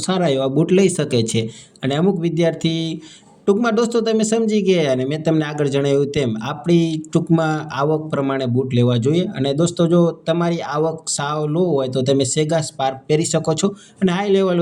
સારા એવા બૂટ લઈ શકે છે. અને અમુક વિદ્યાર્થી ટૂંકમાં દોસ્તો તમે સમજી ગયા, અને મેં તમને આગળ જણાવ્યું તેમ આપણી ટૂંકમાં આવક પ્રમાણે બૂટ લેવા જોઈએ. અને દોસ્તો જો તમારી આવક સાવ લો હોય તો તમે સેગા સ્પાર્ક પહેરી શકો છો, અને હાઈ લેવલ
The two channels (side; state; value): both; identical; correlation 1.00